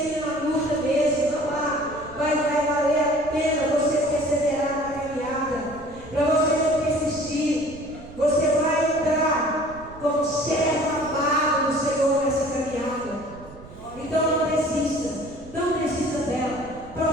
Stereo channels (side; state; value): right; noise; rumble, 18 dB below the sound